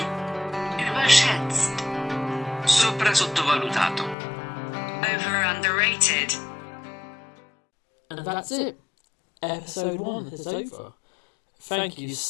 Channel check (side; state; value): right; drops out; at 4.2 s